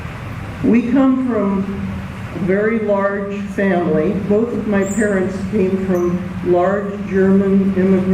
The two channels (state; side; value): identical; both; correlation 1.00